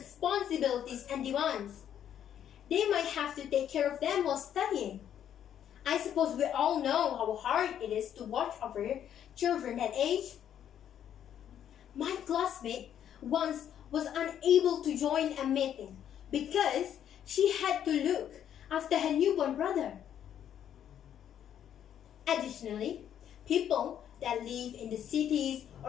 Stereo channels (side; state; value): right; quieter; 9.8 dB